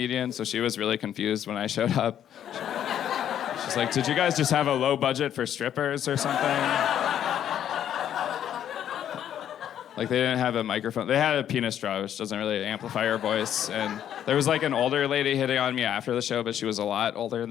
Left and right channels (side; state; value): right; quieter; 10.2 dB